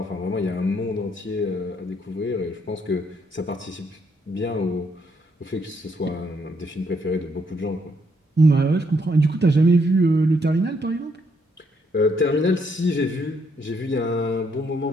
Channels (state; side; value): normal; both; correlation 0.73